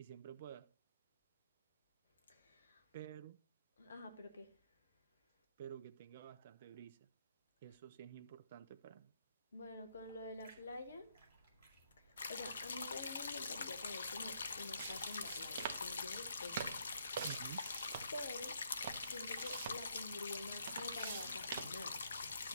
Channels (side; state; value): both; inverted; correlation -0.72